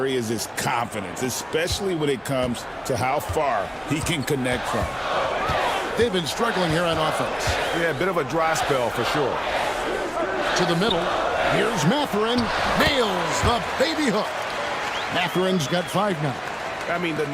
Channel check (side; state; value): both; identical; correlation 1.00